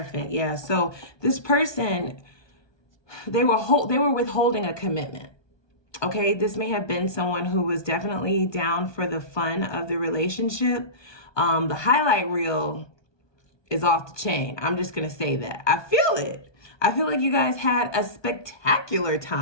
Yeah. So this person, they were withholding a commitment. Okay. This may have been someone who was definitely down for the fun of the relationship. The highlight reel is off the chain. I'm just going to say that. I feel it. I feel like you guys had a spectacular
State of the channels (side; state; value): right; late; 1.2 ms